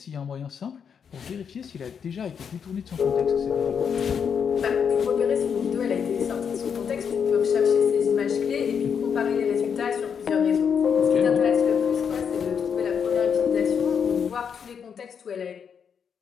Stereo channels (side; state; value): right; quieter; 7.1 dB